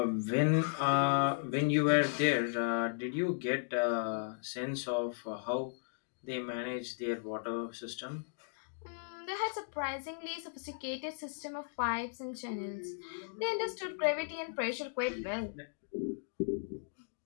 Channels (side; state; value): right; silent; digital silence